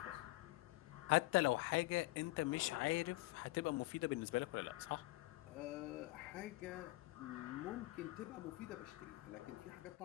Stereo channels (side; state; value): right; quieter; 21.0 dB